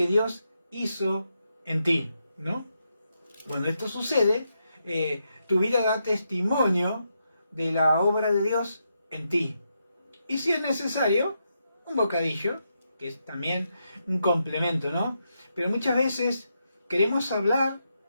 Dios hizo en ti, ¿no? Cuando esto sucede, tu vida da testimonio de la obra de Dios en ti. Y si es necesario, un bocadillo, que es también un complemento, ¿no? Pero muchas veces queremos hablar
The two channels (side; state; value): both; inverted; correlation -0.83